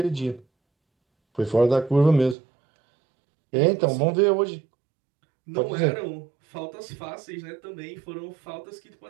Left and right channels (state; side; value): drops out; left; at 2.4 s